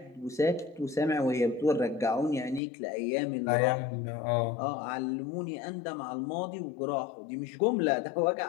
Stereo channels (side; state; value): right; drops out; at 2.6 s